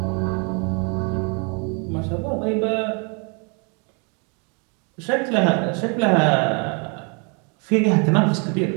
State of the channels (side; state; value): left; quieter; 35.0 dB